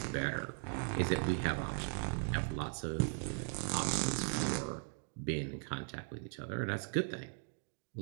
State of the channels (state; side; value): silent; left; 52 dB below the other